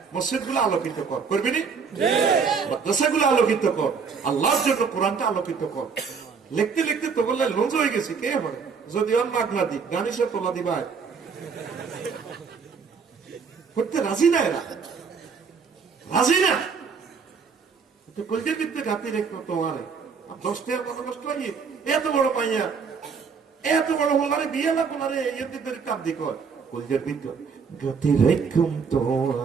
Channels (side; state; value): left; quieter; 5.7 dB